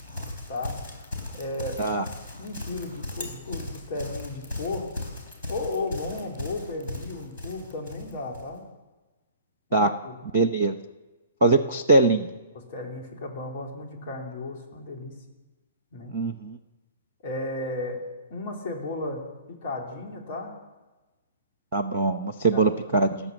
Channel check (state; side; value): inverted; both; correlation -0.47